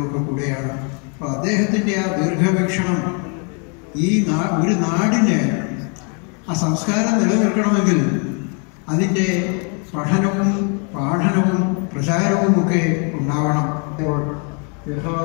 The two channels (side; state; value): right; quieter; 37.8 dB